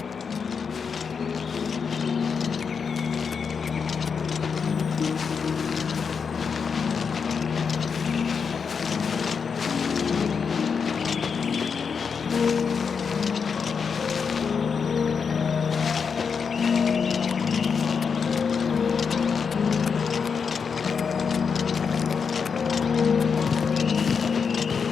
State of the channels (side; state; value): right; quieter; 6.0 dB